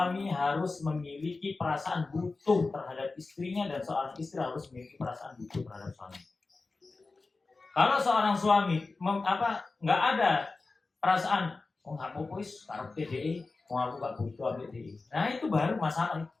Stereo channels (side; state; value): right; quieter; 3.8 dB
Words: harus memiliki perasaan butuh terhadap istrinya dan seorang istri harus memiliki perasaan butuh terhadap suami. Kalau seorang suami nggak ada perasaan, oh nggak apa-apa karena PDI, oh aku nggak butuh PDI. Nah itu baru masalah.